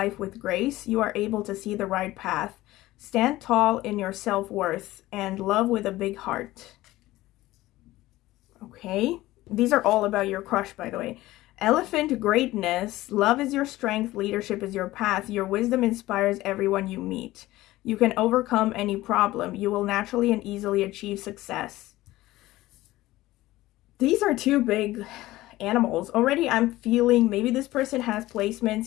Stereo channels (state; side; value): quieter; right; 17.2 dB